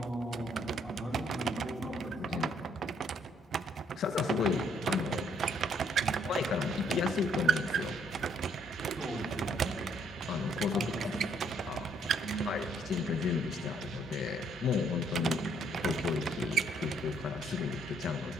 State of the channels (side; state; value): both; normal; correlation 0.68